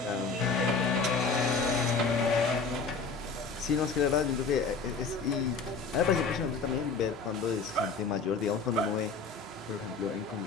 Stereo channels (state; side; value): quieter; right; 4.6 dB